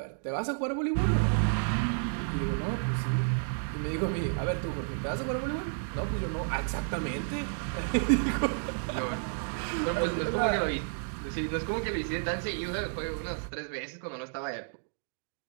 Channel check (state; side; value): silent; left; digital silence